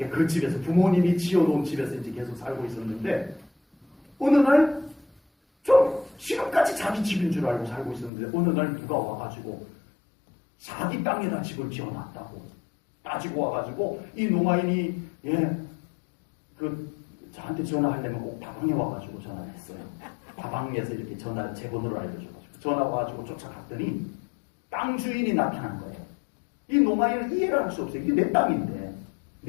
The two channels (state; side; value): drops out; right; at 8.1 s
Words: 그 집에서 부모님이 지어놓은 집에서 이제 계속 살고 있었는데, 어느 날, 좀 지금까지 자기 집인 줄 알고 살고 있었는데, 어느 날 누가 와가지고, 자기 땅에다 집을 지어놨다고 따지고 와가지고, 이 농아인이, 예, 저한테 전화하려면 꼭 다방에 와가지고 전화를 했어요. 다방에서 이렇게 제 번호를 알려줘가지고 전화 와가지고 쫓아갔더니 땅 주인이 나타난 거예요. 이 농아인은 이해를 할 수 없어요. 이게 내 땅인데